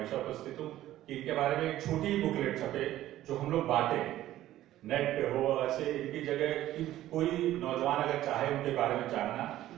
उपस्थित हूँ कि इनके बारे में एक छोटी बुकलेट छपे जो हम लोग बांटे, नेट पे हो, ऐसे इनकी जगह कि कोई नौजवान अगर चाहे उनके बारे में जानना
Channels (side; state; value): left; quieter; 14.0 dB